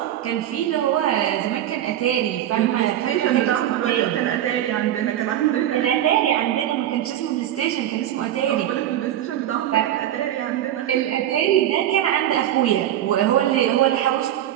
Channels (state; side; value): quieter; left; 12.0 dB